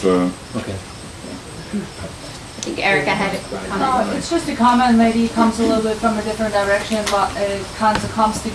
a... Okay. I think Erica had a comment. It's just a comment, maybe it comes a little bit from a different direction, but it kind of comes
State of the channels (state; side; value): identical; both; correlation 1.00